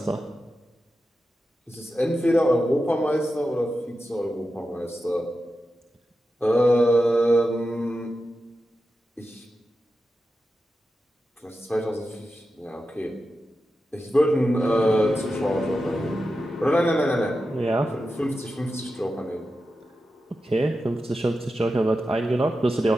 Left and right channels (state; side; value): normal; both; correlation 0.91